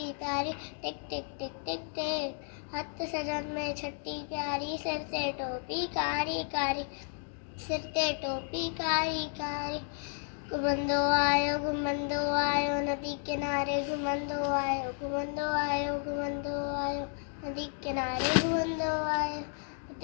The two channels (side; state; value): right; silent; 56 dB below the other